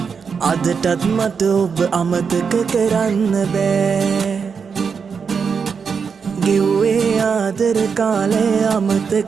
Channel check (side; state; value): left; quieter; 6.0 dB